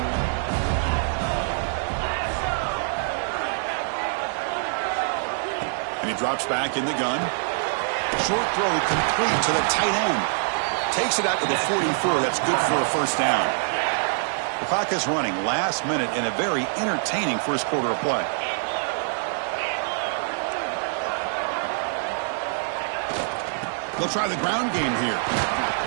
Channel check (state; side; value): silent; left; 62 dB below the other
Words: And he drops back in the gun. Short throw complete to the tight end. Takes it out to the 44. That's good for a first down. The clock is running last minute in a very entertaining first quarter of play. They'll try the ground game here.